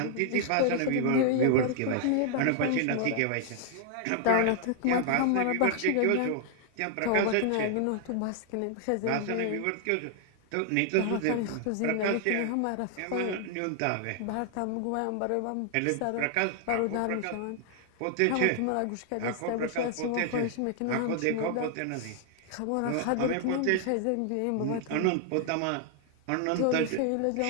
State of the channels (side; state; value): both; different; correlation 0.00